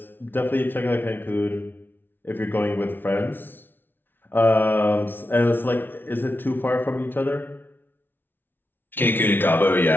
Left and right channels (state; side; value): late; right; 0.099 ms